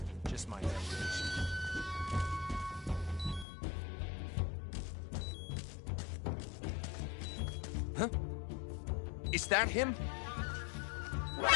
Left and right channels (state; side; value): drops out; right; at 3.5 s